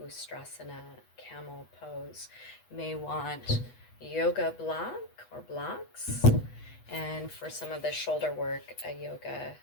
Ustrasana, camel pose. You may want yoga block or blocks, and for some of the shoulder work, a yoga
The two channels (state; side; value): late; right; 8.2 ms